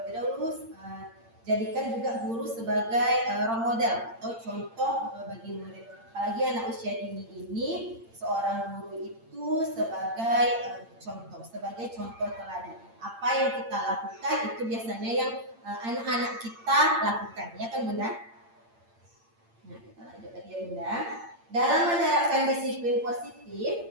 dahulu, jadikan juga guru sebagai role model atau contoh bagi murid. Apalagi anak usia dini ini, seorang guru itu sebagai contoh teladan. Apa yang kita lakukan itu biasanya yang anak-anak kita lakukan, ya kan Bunda? Nah, kita lanjut lagi ya Bunda. Dalam menerapkan disiplin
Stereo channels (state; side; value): late; left; 8.8 ms